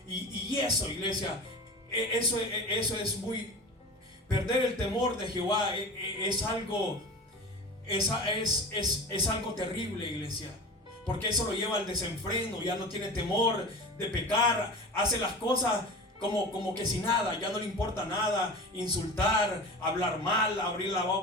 Y eso, iglesia, eso es muy... Perder el temor de Jehová es algo terrible, iglesia. Porque eso lo lleva al desenfreno. Ya no tiene temor de pecar. Hace las cosas como que sin nada. Ya no le importa nada. Insultar, hablar mal, abrir la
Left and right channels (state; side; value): normal; both; correlation 0.33